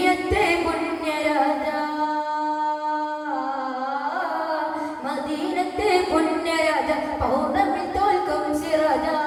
പുണ്യരാജ, മദീനത്തെ പുണ്യരാജ, പൗർണമി തോൽക്കും സിറാജ,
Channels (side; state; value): both; identical; correlation 1.00